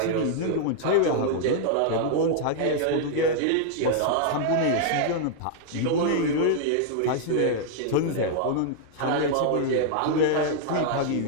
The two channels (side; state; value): both; different; correlation -0.01